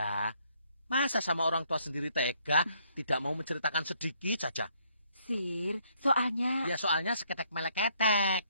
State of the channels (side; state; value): both; inverted; correlation -0.69